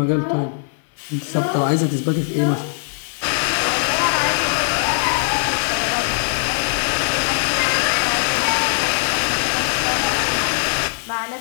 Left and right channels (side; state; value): right; silent; digital silence